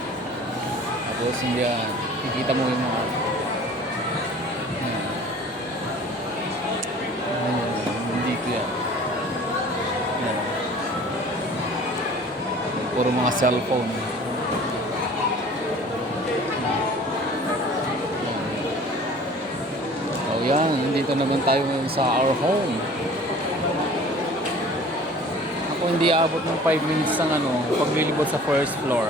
Tapos hindi nakikita mo yung mga hindi ko yan. Puro mga cellphone. So yan, dito naman tayo sa our home. Ako hindi abot ng 5 minutes ng paglilibot sa first floor.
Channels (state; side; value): normal; both; correlation 0.47